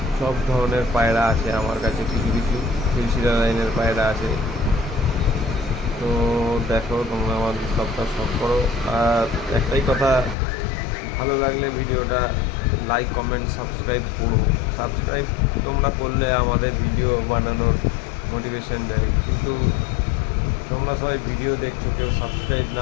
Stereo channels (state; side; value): drops out; right; at 10.4 s